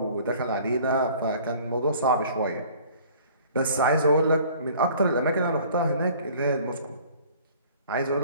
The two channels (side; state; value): both; inverted; correlation -0.50